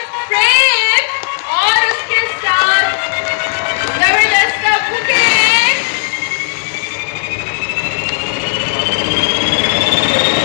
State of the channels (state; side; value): silent; right; 64 dB below the other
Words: फ्रेम और उसके साथ जबरदस्त का बुके।